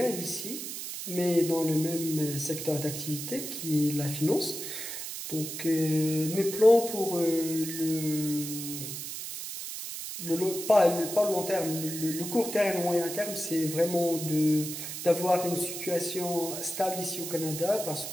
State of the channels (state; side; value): noise; right; hiss, 7 dB below the sound